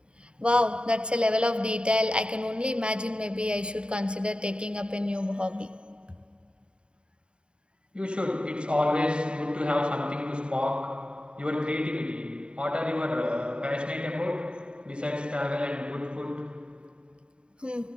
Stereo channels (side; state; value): left; late; 0.052 ms